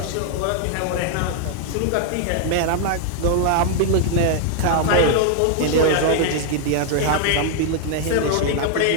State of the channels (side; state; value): both; different; correlation 0.00